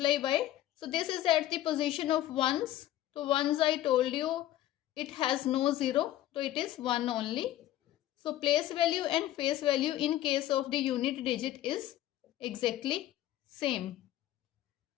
by, so this is at the position of ones. तो ones I told you it has no zero, तो it is 1 only. So place value and face value in case of the unit digit is exactly same.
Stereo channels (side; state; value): right; quieter; 13.8 dB